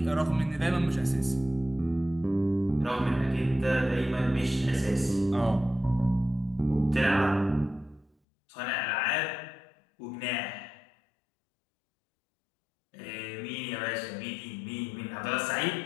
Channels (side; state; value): right; drops out; at 8.1 s